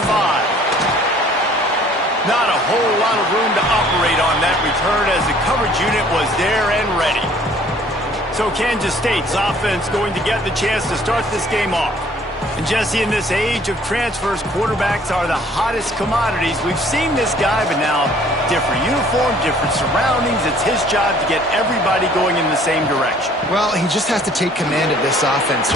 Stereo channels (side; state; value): both; normal; correlation 0.56